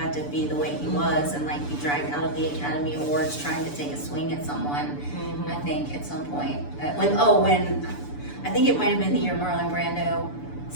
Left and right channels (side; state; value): right; late; 6.9 ms